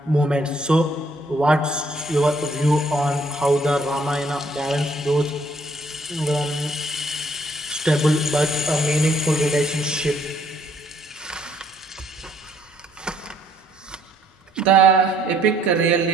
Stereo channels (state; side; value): normal; both; correlation 0.65